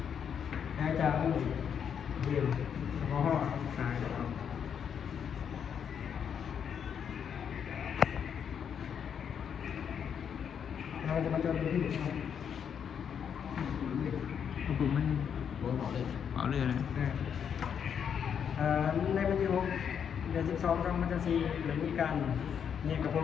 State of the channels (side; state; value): right; quieter; 7.8 dB